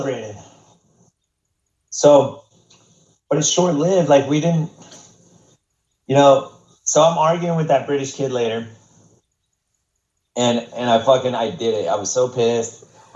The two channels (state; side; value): identical; both; correlation 1.00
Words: So, but it's short lived. Like we didn't, you know. So I'm arguing with that British kid later, and I did it. I was so pissed.